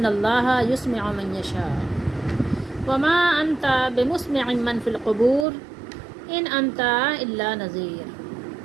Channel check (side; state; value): left; drops out; at 5.5 s